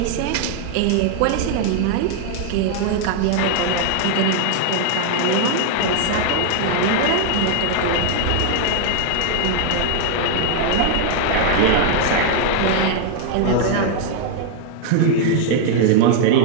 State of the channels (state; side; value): different; both; correlation 0.00